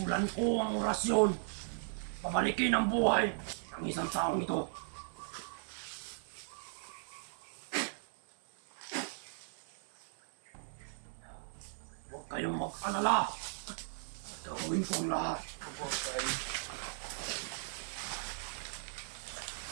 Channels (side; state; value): left; silent; digital silence